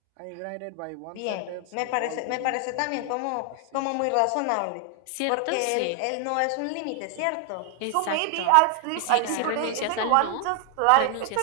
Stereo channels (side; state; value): both; different; correlation 0.00